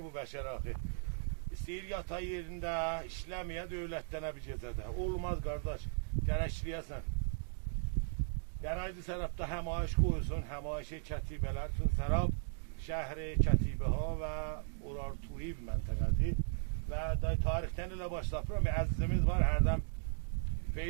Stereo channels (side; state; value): left; silent; digital silence